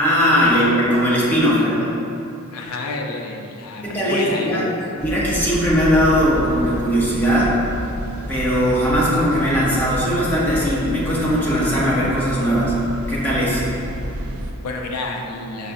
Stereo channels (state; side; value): normal; both; correlation 0.47